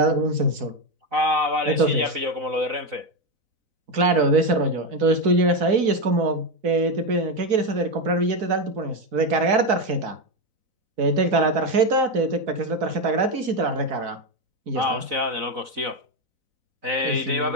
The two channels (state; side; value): late; left; 4.0 ms